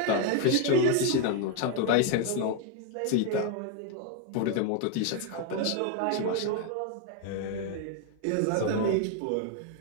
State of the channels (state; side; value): different; both; correlation 0.01